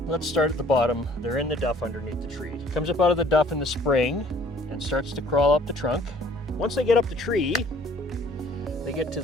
Let's start at the bottom. They're in the duff underneath the tree. Comes up out of the duff in the spring and starts to crawl up the trunk. Once they get up the tree, they get to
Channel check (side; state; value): both; normal; correlation 0.56